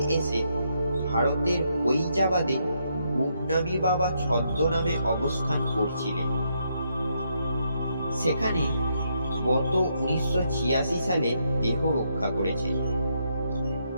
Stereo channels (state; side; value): inverted; both; correlation -0.77